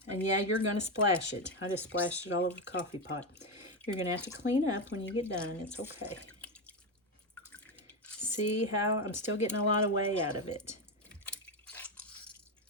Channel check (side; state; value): both; normal; correlation 0.11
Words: and yeah, you're going to splash it. I just splashed it all over the coffee pot. You're going to have to clean up when you get done. It's okay. See how I'm still getting a lot of whey out of it.